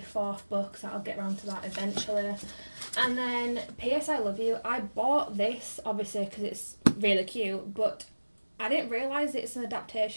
4th book, so I'll get around to that eventually. And then P.S. I Love You, I bought this obviously because it's really cute, but I didn't realise it's an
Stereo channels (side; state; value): both; inverted; correlation -1.00